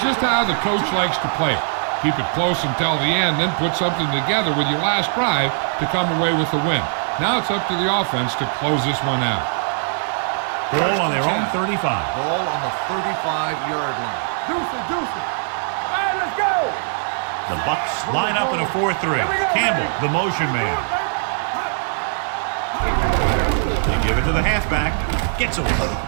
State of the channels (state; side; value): silent; left; 65 dB below the other